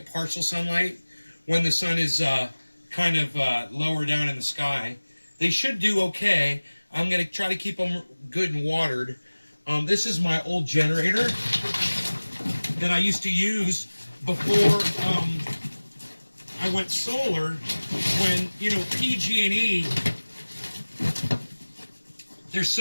partial sunlight when the sun is kind of lower down in the sky. They should do okay. I'm going to try to keep them good and watered. This is my old generator that I used to use before I went solar. When, you know, PG&E, they're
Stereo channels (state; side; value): inverted; both; correlation -1.00